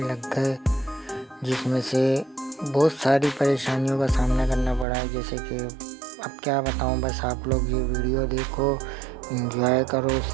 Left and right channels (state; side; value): drops out; left; at 4.9 s